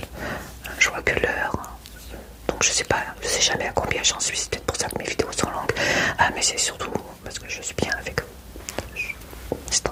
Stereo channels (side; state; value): both; identical; correlation 1.00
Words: Je vois que l'heure. Donc je sais jamais à combien j'en suis. C'est peut-être pour ça que mes vidéos sont longues. Ah, mais c'est surtout parce que je suis bien avec eux. C'est